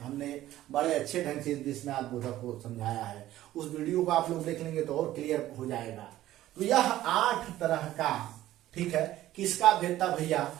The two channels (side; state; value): left; quieter; 14.3 dB